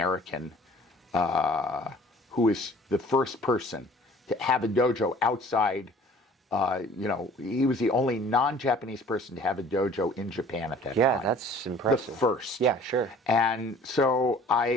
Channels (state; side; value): normal; both; correlation 0.50